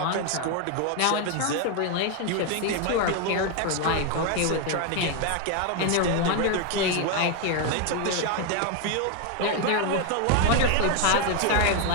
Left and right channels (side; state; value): both; different; correlation 0.01